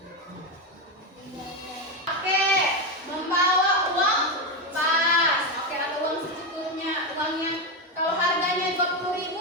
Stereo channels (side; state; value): both; normal; correlation 0.10